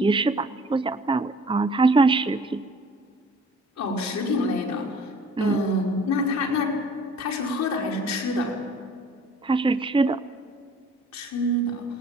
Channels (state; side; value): normal; both; correlation 0.52